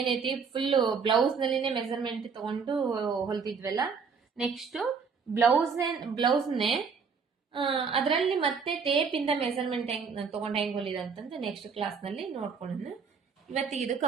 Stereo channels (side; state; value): left; quieter; 5.7 dB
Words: ಫುಲ್ ಬ್ಲೌಸ್ ನಲ್ಲಿನೇ ಮೆಜರ್ಮೆಂಟ್ ತಗೊಂಡು ಹೊಲ್ತಿದ್ವಲ್ಲ, ನೆಕ್ಸ್ಟ್ ಬ್ಲೌಸ್ನೇ ಅದರಲ್ಲಿ ಮತ್ತೆ ಟೇಪ್ ಇಂದ ಮೆಜರ್ಮೆಂಟ್ ತಗೊಂಡು ಹೆಂಗ್ ಹೊಲಿದ ಅಂತಂದ್ರೆ ನೆಕ್ಸ್ಟ್ ಕ್ಲಾಸ್ ನಲ್ಲಿ ನೋಡ್ಕೊಂಡು ಇವತ್ತಿಗೆ ಇದು